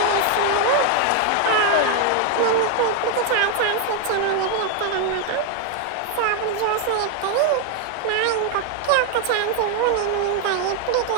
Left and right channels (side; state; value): both; different; correlation 0.01